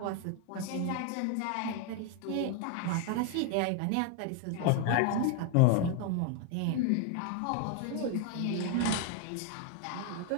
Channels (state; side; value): different; both; correlation 0.01